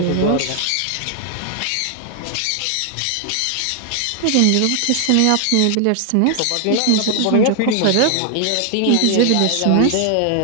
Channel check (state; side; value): different; both; correlation 0.00